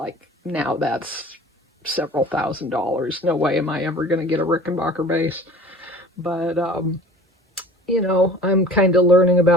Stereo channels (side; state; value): both; normal; correlation 0.44